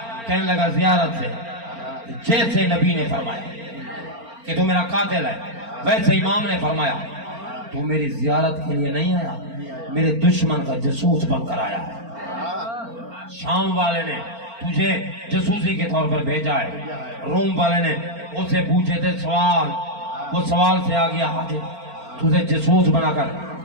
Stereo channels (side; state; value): left; late; 4.4 ms